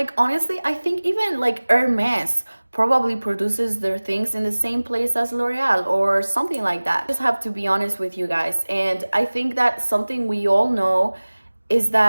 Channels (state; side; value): inverted; both; correlation -1.00